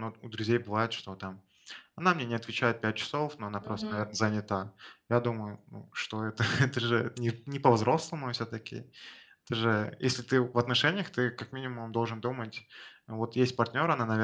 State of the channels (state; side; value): identical; both; correlation 1.00